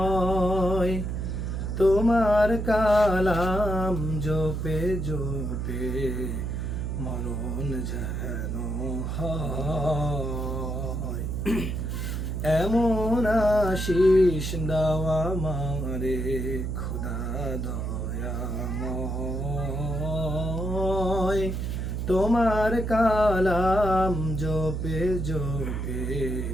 তোমার কালাম জপে জপে মরণ যেন হয়, এমন আশিস দাও আমারে খোদা দয়াময়। তোমার কালাম জপে জপে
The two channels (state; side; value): noise; right; hum, 2 dB below the sound